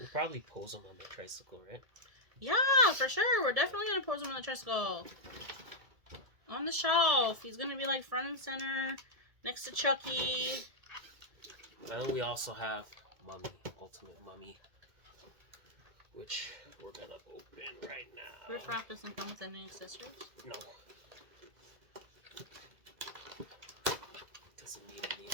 probably pose him on the tricycle, right? Yeah, for sure. We're definitely going to pose him on the tricycle. On the shelf. He's going to be like front and center next to Chucky. And then we also have Mummy, Ultimate Mummy, which we're going to open right now. Riff Raff doesn't come with any accessories? No. Doesn't need any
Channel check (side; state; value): left; late; 1.7 ms